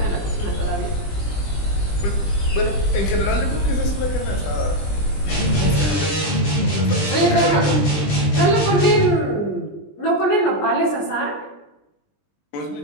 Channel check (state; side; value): late; right; 20 ms